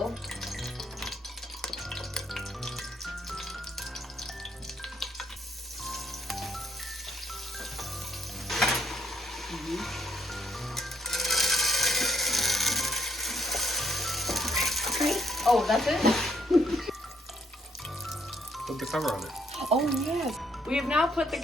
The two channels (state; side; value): normal; both; correlation 0.71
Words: Oh, that's it? Put the cover on it. Oh, yes. We have now put the